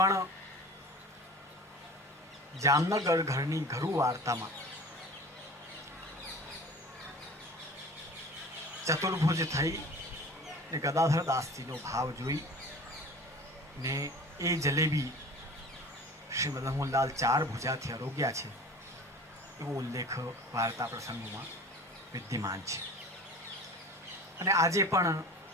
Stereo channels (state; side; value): normal; both; correlation 0.40